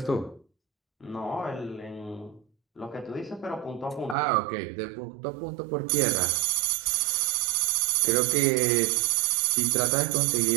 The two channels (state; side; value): drops out; left; at 4.2 s